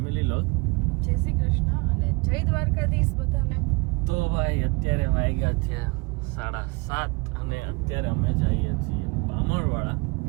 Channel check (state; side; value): quieter; left; 27.8 dB